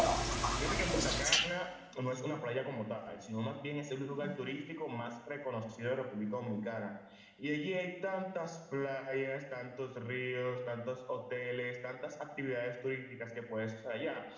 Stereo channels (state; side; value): identical; both; correlation 1.00